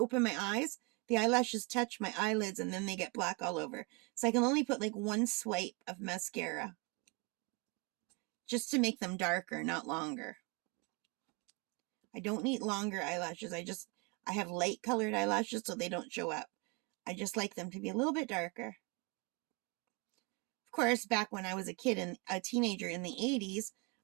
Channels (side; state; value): left; quieter; 29.9 dB